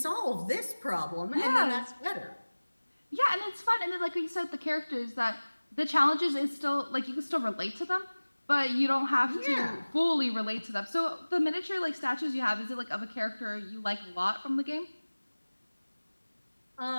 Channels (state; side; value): inverted; both; correlation -1.00